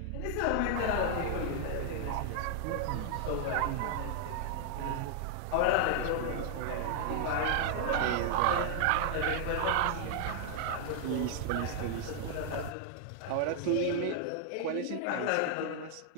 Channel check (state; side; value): different; both; correlation -0.01